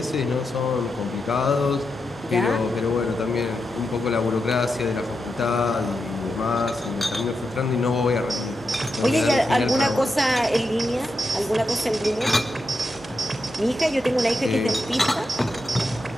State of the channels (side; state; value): both; normal; correlation 0.87